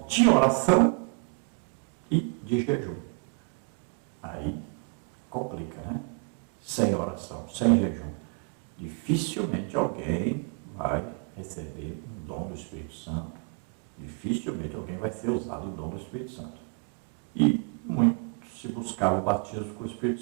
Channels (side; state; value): left; quieter; 35.6 dB